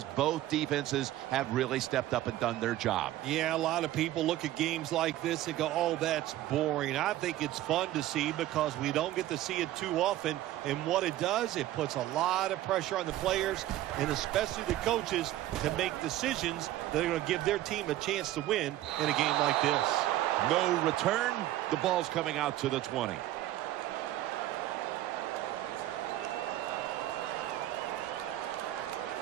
both defenses have really stepped up and done their job. Yeah, a lot of people look at games like this and go, oh, that's boring. I think it's fun to see because we don't get to see it too often. And what it does, it puts a lot of pressure on the players and especially the coaches to make decisions that are going to give their team a chance to win in a game like this. No return. The ball's coming out to the 20.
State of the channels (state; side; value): quieter; left; 14.4 dB